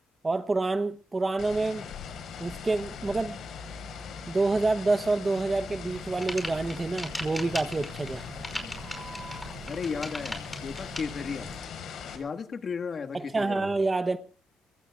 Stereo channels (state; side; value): normal; both; correlation 0.93